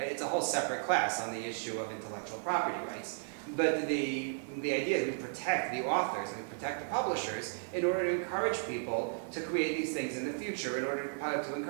It's a whole separate class on the issue of intellectual property rights. But the idea is we protect the authors and we protect the publishers in order to encourage people to create these things in the future, in order to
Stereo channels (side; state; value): left; silent; digital silence